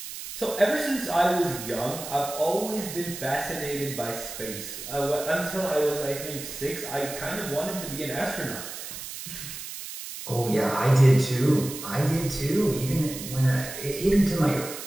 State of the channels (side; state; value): right; noise; hiss, 9 dB below the sound